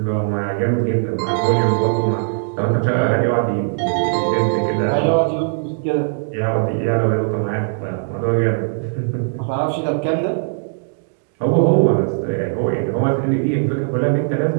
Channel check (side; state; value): left; silent; digital silence